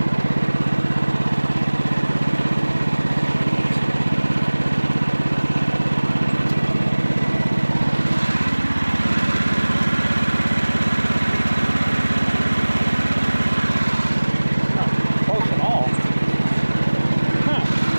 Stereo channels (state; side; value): inverted; both; correlation -1.00